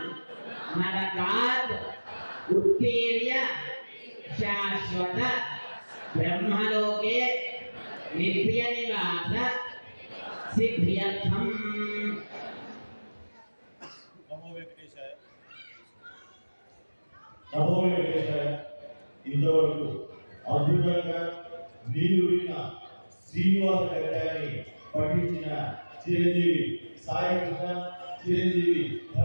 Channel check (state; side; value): inverted; both; correlation -1.00